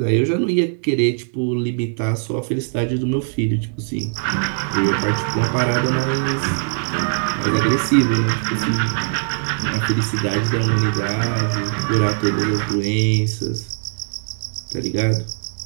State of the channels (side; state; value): left; silent; 65 dB below the other